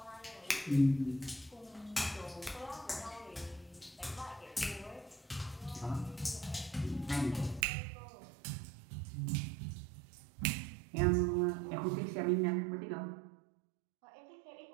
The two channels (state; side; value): drops out; left; at 7.7 s